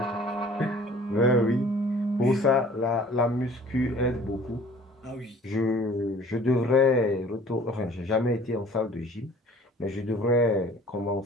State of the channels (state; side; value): normal; both; correlation 0.50